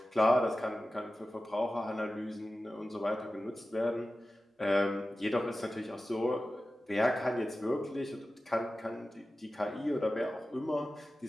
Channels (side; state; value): both; normal; correlation 0.95